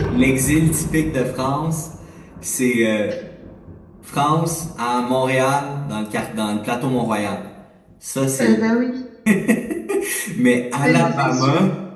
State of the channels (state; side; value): identical; both; correlation 1.00